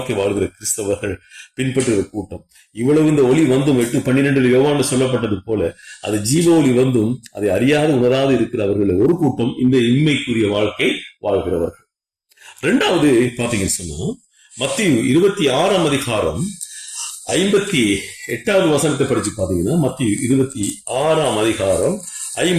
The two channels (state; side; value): identical; both; correlation 1.00